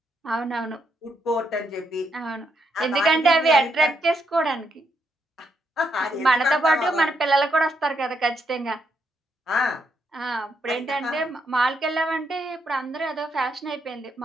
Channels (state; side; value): normal; both; correlation 0.78